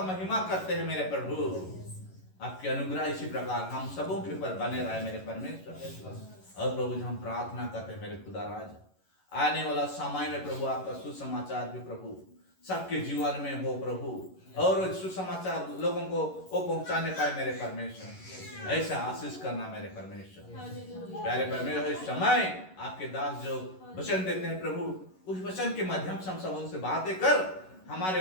महिमा करते हैं मेरे प्रभु। आपकी अनुग्रह इसी प्रकार हम सबों के ऊपर बने रहे मेरे परमेश्वर। और प्रभु हम प्रार्थना करते हैं मेरे खुदा राज, आने वाला समय में प्रभु आपका सुसमाचार भी प्रभु सबके जीवन में हो प्रभु, और सुसमाचार लोगों को वो पहुंचाने पाए मेरे परमेश्वर। ऐसा आशीष करना मेरे परमेश्वर। प्यारे परमेश्वर, इस समय आपके दास जो वचन देते हैं प्रभु, उस वचन के माध्यम से हम सब उनसे बातें कर, हमारे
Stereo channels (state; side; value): late; right; 11 ms